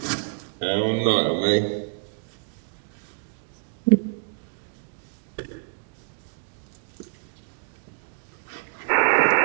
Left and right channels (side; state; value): left; silent; digital silence